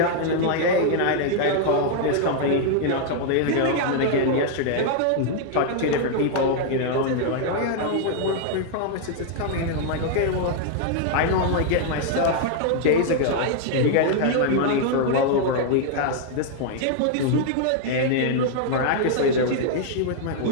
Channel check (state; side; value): different; both; correlation 0.00